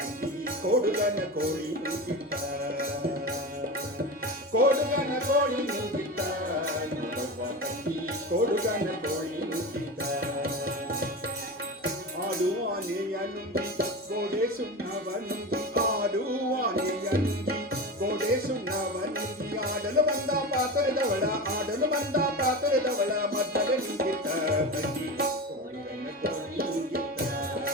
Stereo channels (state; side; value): normal; both; correlation 0.25